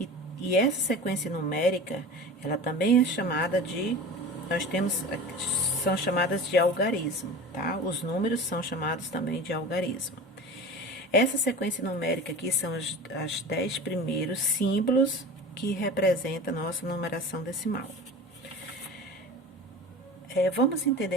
e essa sequência numérica, ela também é chamada de são chamadas de algarismo, tá? Os números são chamados também de algarismo. Essa sequência numérica aqui são as 10 primeiros símbolos que representam a nossa numeração decimal. Vamos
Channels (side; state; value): both; normal; correlation 0.35